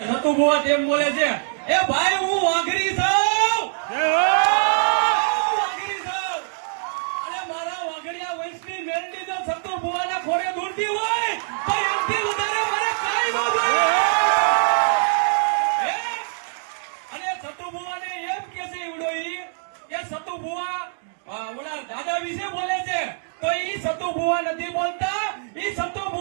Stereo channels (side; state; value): left; silent; digital silence